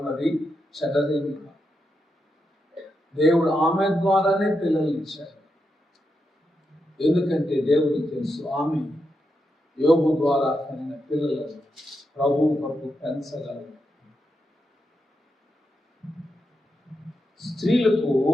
అది చెడ్డదేమి కాదు. దేవుడు ఆమె ద్వారానే పిల్లల్ని ఇచ్చాడు. ఎందుకంటే దేవుడికి తెలుసు ఆమె యోబు ద్వారా కలిగిన పిల్లలను ప్రభువు కొరకు పెంచగలరు. స్త్రీలకు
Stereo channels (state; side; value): normal; both; correlation 0.85